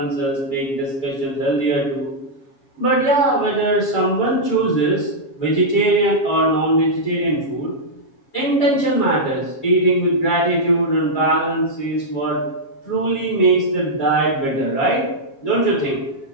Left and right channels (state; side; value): late; right; 7.3 ms